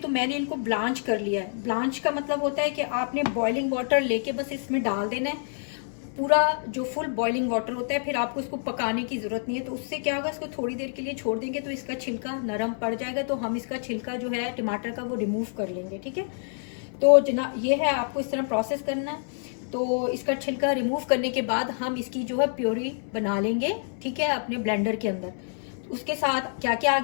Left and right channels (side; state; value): right; silent; 60 dB below the other